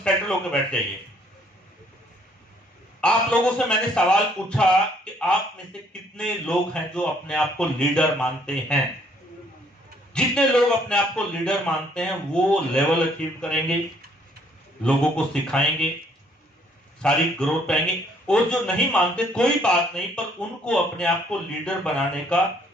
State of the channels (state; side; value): normal; both; correlation 0.64